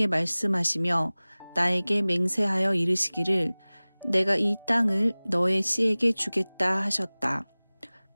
말씀하시며 나에게 맹세하여 이르시기를 내가 이 땅을 너의 씨에게 주겠다 하셨다.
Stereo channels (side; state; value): both; inverted; correlation -1.00